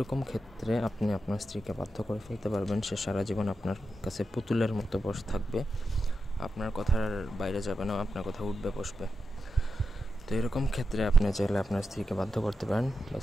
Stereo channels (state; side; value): normal; both; correlation 0.89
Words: ক্ষেত্রে আপনি আপনার স্ত্রীকে বাধ্য করে ফেলতে পারবেন। সে সারা জীবন আপনার কাছে পুতুলের মতো বসে থাকবে, আপনার কথার বাইরে যাবে না, আপনার কথা উঠবে বসবে। তো এরকম ক্ষেত্রে আপনি চাইলে আপনার স্ত্রীকে বাধ্য করতে পারেন বা